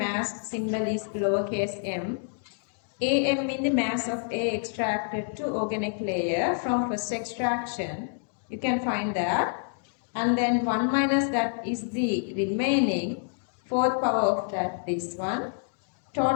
symbol is lowercase m. AM means the mass of A extracted to organic layer from first extraction. You can find that. And then 1 minus that is the remaining fourth power of that, this one.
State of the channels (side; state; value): right; silent; 60 dB below the other